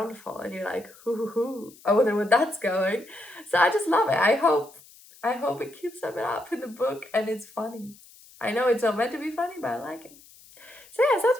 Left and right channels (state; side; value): noise; left; hiss, 24 dB below the sound